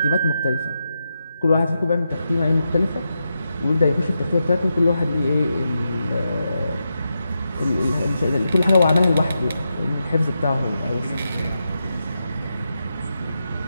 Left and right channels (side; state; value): both; inverted; correlation -0.87